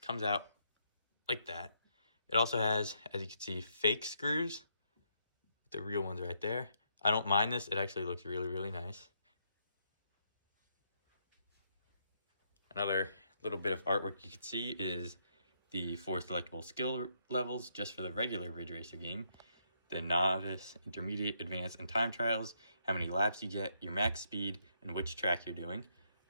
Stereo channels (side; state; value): both; inverted; correlation -0.76